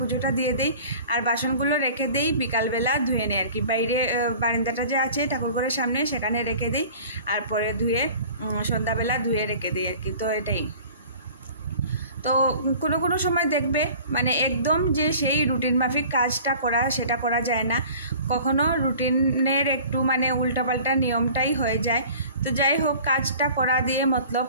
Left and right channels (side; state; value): both; inverted; correlation -0.45